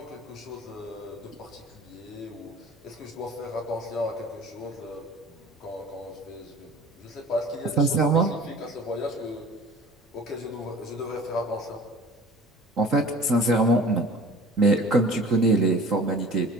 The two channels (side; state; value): both; normal; correlation 0.44